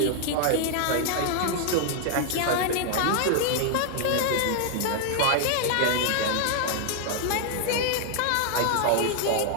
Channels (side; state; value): both; different; correlation 0.00